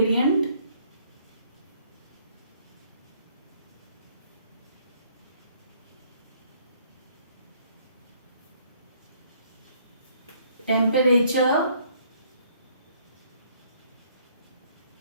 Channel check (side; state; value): both; inverted; correlation -0.63